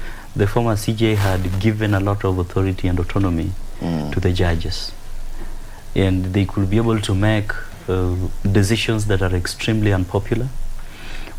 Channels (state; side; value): identical; both; correlation 1.00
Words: the former CJ had given a lot of authority and autonomy to the judges, and they could be able to make decisions that are extremely unpopular